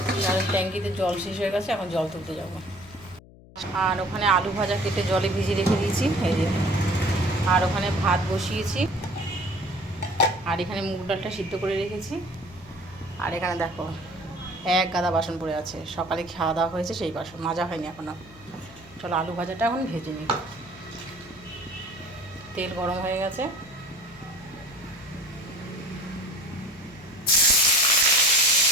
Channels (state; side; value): noise; left; hum, 22 dB below the sound